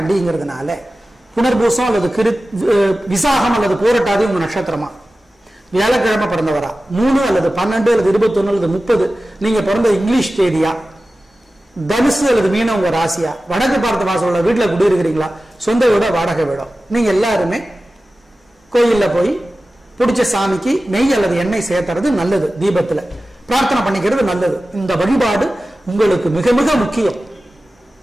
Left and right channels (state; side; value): normal; both; correlation 0.95